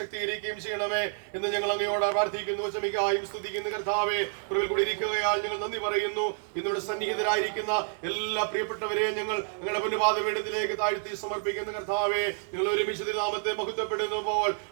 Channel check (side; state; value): left; silent; 59 dB below the other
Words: ചെയ്യണമേ എന്ന് ഞങ്ങൾ അങ്ങയോട് പ്രാർത്ഥിക്കുന്നു. വചമിക്കായും സ്തുതിക്കുന്നു. കർത്താവെ, കുറവിൽ കൂടി ഇരിക്കുകയാൽ ഞങ്ങൾ നന്ദി പറയുന്നു. ഇന്നിവിടെ സന്നിഹിതരായിരിക്കുന്ന എല്ലാ പ്രിയപ്പെട്ടവരെയും ഞങ്ങൾ ഞങ്ങളുടെ പുണ്യപാദപീഠത്തിലേക്ക് താഴ്ത്തി സമർപ്പിക്കുന്ന കർത്താവെ, ഞങ്ങൾ ഒരുമിച്ച് നാമത്തെ മഹത്വപ്പെടുന്നു പോൽ